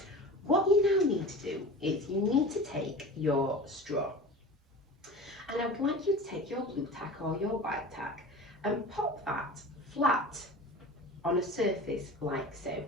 What you now need to do is you need to take your straw, and I would like you to take your blue tack or your white tack and pop that flat on a surface like so.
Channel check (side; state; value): both; normal; correlation 0.35